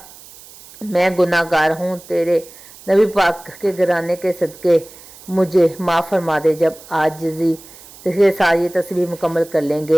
میں گناہ گار ہوں، تیرے نبی پاک کے گھرانے کے صدقے مجھے معاف فرما دے۔ جب عاجزی کے ساتھ یہ تسبیح مکمل کر لیں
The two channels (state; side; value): noise; right; hiss, 20 dB below the sound